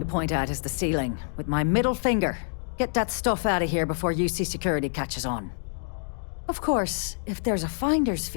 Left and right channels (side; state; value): right; silent; 60 dB below the other